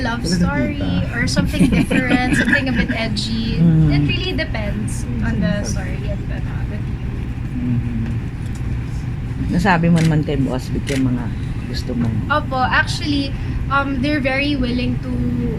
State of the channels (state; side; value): identical; both; correlation 1.00